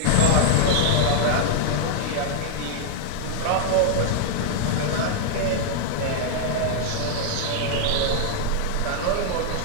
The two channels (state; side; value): different; both; correlation -0.01